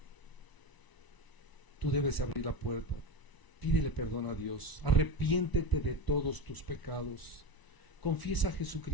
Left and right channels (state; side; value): late; right; 1.0 ms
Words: Tú debes abrir la puerta, pídele perdón a Dios, arrepiéntete de todos tus pecados, confiesa a